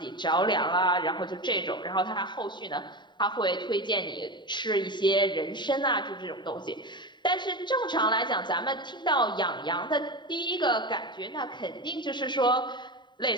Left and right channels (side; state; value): right; late; 0.22 ms